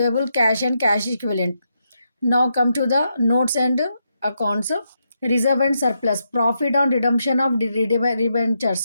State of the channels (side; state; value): both; inverted; correlation -0.82